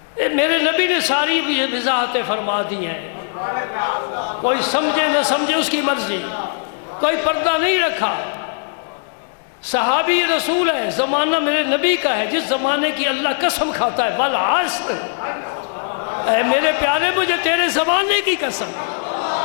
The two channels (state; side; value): silent; right; digital silence